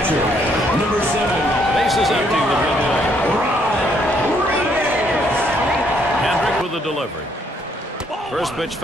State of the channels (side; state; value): both; normal; correlation 0.69